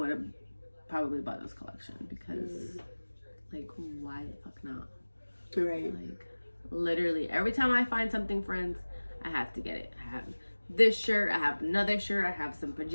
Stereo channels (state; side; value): inverted; both; correlation -1.00